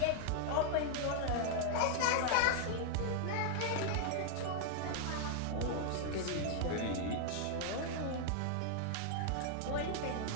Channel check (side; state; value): both; different; correlation 0.00